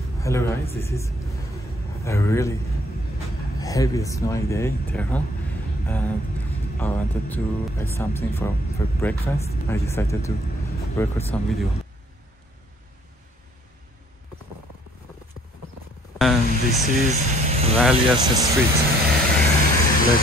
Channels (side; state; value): both; normal; correlation 0.61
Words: Hello guys, this is a really heavy snowy day in Tehran and I wanted to buy something for breakfast. I decided to record some video. And this is Valias Street. Let